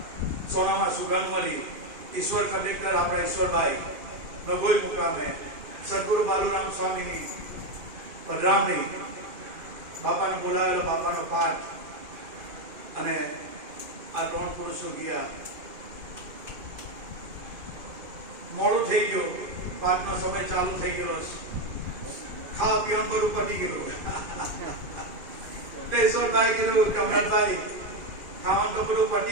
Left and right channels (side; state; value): left; late; 2.5 ms